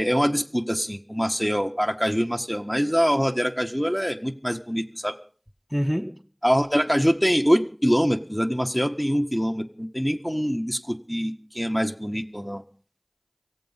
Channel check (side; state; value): both; identical; correlation 1.00